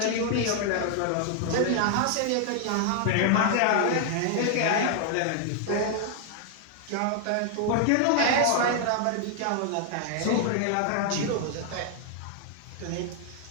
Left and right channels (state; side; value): different; both; correlation 0.00